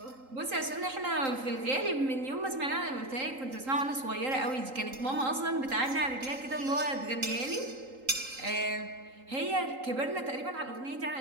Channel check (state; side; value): late; left; 3.8 ms